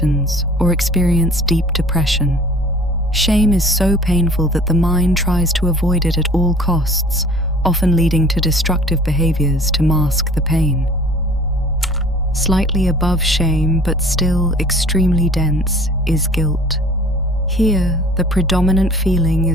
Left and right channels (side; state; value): both; normal; correlation 0.49